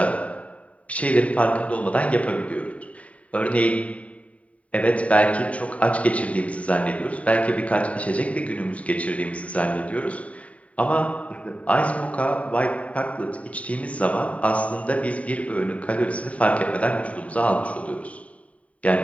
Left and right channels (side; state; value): right; late; 0.067 ms